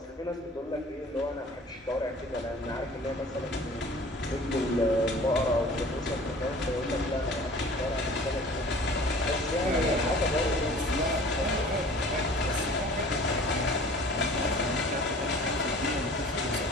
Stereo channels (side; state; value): both; normal; correlation 0.46